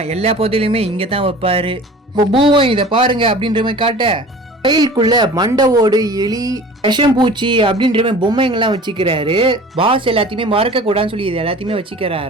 எல்லா பொருளையுமே இங்க தான் வைப்பாரு. இப்போ பூவும் இதை பாருங்க அப்படின்ற மாதிரி காட்ட, ஃபைலுக்குள்ள மண்டை ஓடு, எலி, விஷம்பூச்சி அப்படின்ற மாதிரி பொம்மைங்கெல்லாம் வச்சுக்கிறாரு. பாஸ் எல்லாத்தையுமே மறக்க கூடாதுன்னு சொல்லி இது எல்லாத்தையுமே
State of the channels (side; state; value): both; normal; correlation 0.42